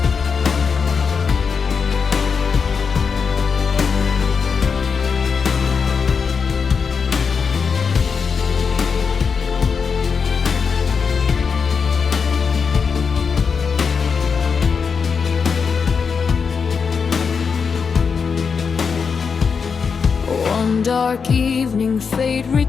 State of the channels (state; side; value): quieter; right; 5.8 dB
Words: One dark evening, fate